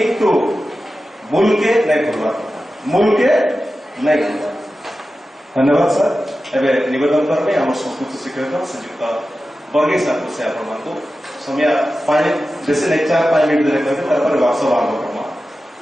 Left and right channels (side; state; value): both; normal; correlation 0.93